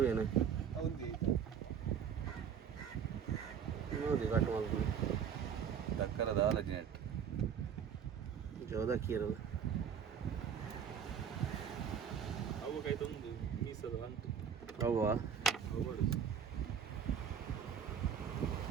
ನೋಡಿ ಕಟ್ ಮಾಡ್ಬೋದು ದಕ್ಕರದ ಆಲಜಿನೆಟ್ ಜೋದಕ್ಕಿ ಇರಲ್ಲ ಹೌವಾ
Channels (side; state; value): left; quieter; 7.8 dB